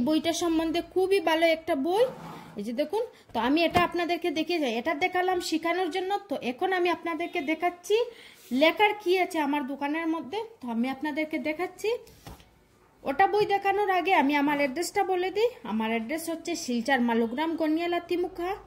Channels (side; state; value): both; identical; correlation 1.00